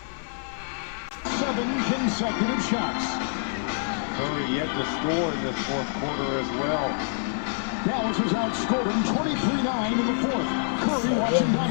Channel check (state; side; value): silent; right; 59 dB below the other